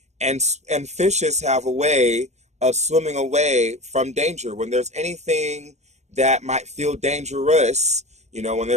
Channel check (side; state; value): left; late; 0.33 ms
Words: fishes have a way of swimming away from danger. When there's anything that might feel dangerous, when